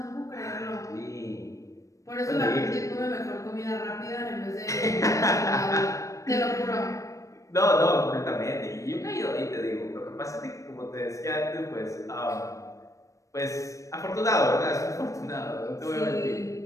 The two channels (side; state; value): right; late; 0.16 ms